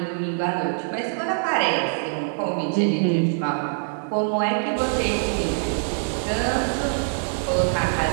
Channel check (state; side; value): silent; left; 63 dB below the other